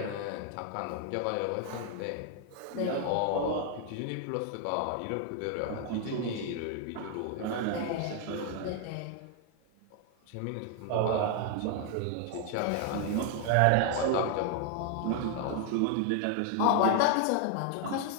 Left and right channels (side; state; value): both; different; correlation 0.00